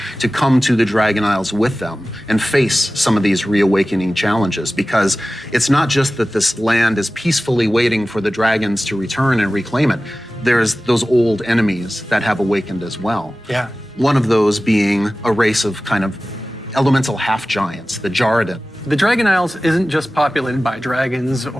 to come to the Dragon Isles with them and face some of these reawakening challenges, because it's not just that this land is peacefully waiting for the dragons to return and reclaim it. There's those old enemies that have awakened as well. Yeah. One of those being a race of kind of elemental half-giants, the Jarradin. The Dragon Isles isn't just populated by dragons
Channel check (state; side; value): normal; both; correlation 0.96